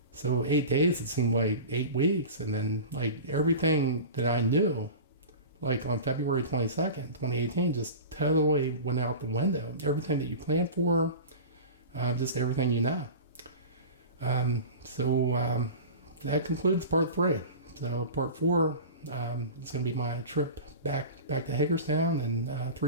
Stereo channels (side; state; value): both; inverted; correlation -0.32